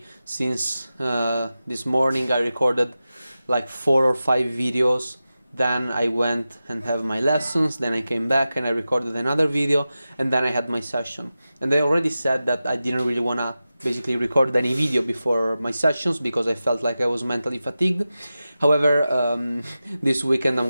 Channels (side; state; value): both; inverted; correlation -0.94